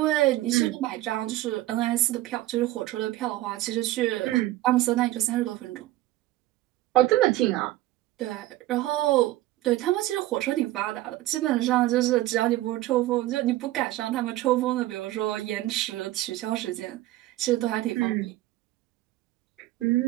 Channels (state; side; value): quieter; left; 16.3 dB